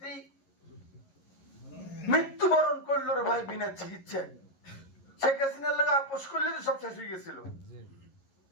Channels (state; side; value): late; right; 11 ms